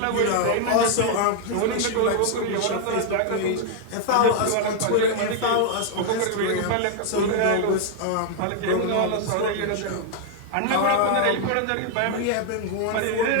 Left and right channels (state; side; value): different; both; correlation 0.00